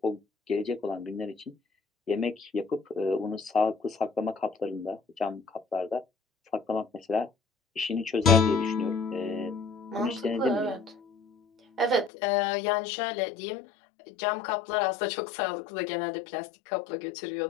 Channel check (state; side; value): drops out; right; at 12.1 s